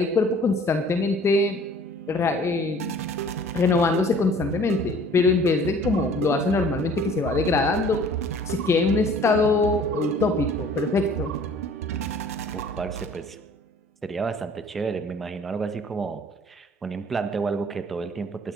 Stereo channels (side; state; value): both; normal; correlation 0.51